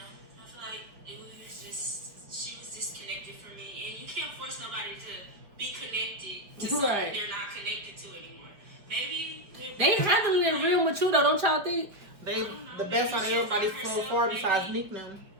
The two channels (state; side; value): late; left; 4.9 ms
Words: I feel like it was just, she was disconnected from me. And you can't force nobody to be connected to something Right. they're not connected to anymore. Maybe They handling it real mature though, don't y'all think? They the best out of everybody so far besides Nick them.